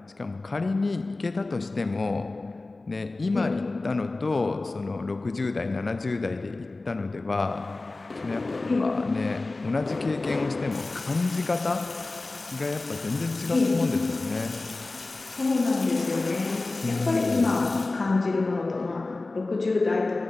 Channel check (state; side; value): quieter; right; 3.2 dB